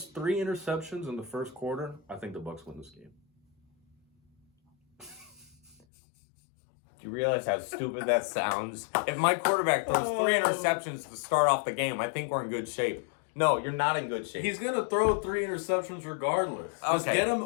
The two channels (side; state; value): right; drops out; at 5.8 s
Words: 3 interceptions in the first quarter, I think the Bucs win this game. Do you realize how stupid that sounds? If my quarterback throws 3 interceptions to start off the game, I think we're in good shape. No, you're not in good shape. He's going to throw 3 interceptions regardless. Just get him